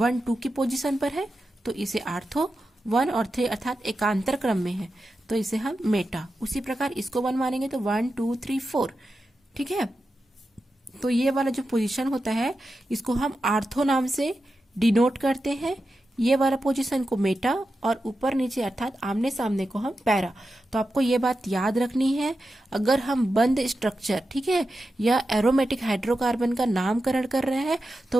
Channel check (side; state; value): both; normal; correlation 0.90